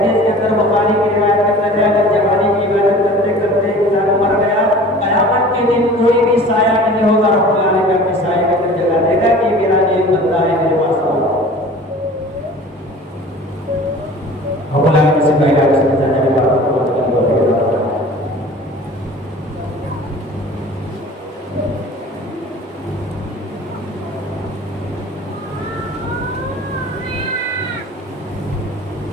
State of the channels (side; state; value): both; normal; correlation 0.43